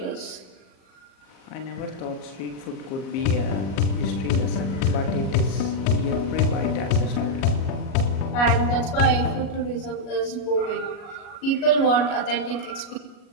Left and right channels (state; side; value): late; right; 37 ms